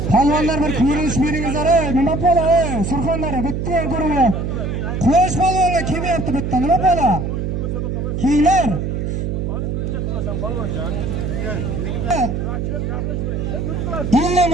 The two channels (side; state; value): right; noise; hum, 2 dB below the sound